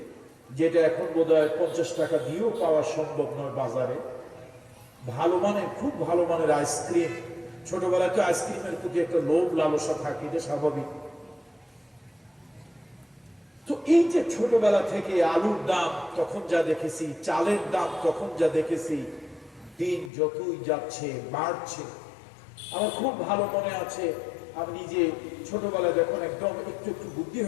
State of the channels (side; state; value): right; drops out; at 20.1 s